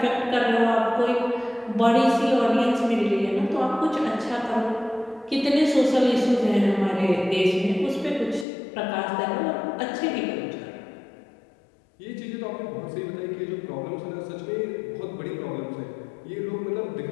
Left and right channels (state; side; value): drops out; right; at 8.5 s